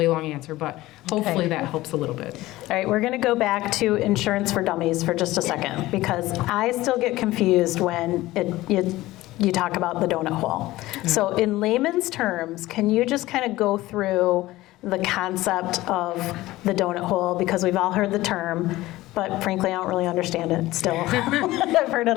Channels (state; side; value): quieter; right; 17.5 dB